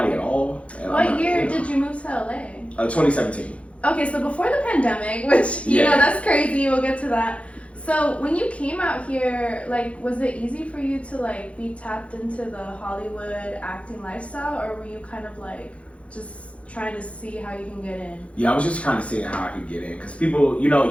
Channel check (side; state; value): right; late; 0.063 ms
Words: at all. What year did you move to LA? 2017. Okay, so before the pandemic, which you know that's crazy. We'll get to that. So when you came out here, like, was it easy for you to like be tapped into the Hollywood acting lifestyle, or were you kind of like just trying to see how you can get in? Yeah, I was just kind of seeing how I could get in, because people, you